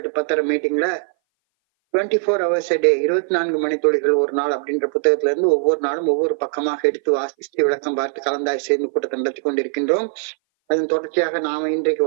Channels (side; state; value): left; silent; 59 dB below the other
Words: to 10:30 மீட்டிங்ல 24 hours a day 24 மணித்துளிகள் ஒரு நாள் அப்படின்ற புத்தகத்துல இருந்து ஒவ்வொரு நாளும் ஒவ்வொரு பக்கமாக எடுத்து வாசித்து விளக்கம் பார்த்து கலந்தாய் சேர்ந்து கூட்டத்தை நடத்தி கொண்டிருக்கின்றோம். அதன் தொடர்ச்சியாக நாம இன்றைக்கு